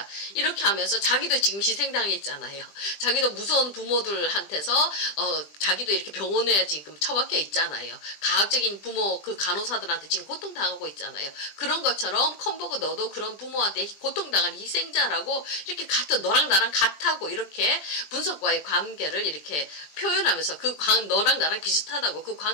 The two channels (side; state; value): right; late; 20 ms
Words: 이렇게 하면서 자기도 지금 희생당했잖아요. 자기도 무서운 부모들한테서 자기도 이렇게 병원에 지금 처박혀 있잖아요. 가학적인 부모 그 간호사들한테 지금 고통당하고 있잖아요. 그런 것처럼 컴버그 너도 그런 부모한테 고통당한 희생자라고 이렇게 같은 너랑 나랑 같다고 이렇게 분석과의 관계를 이렇게 표현하면서 너랑 나랑 비슷하다고 그